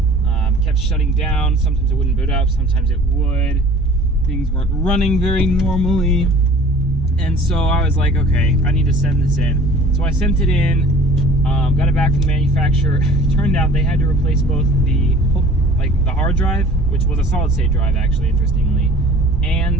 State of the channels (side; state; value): both; normal; correlation 0.48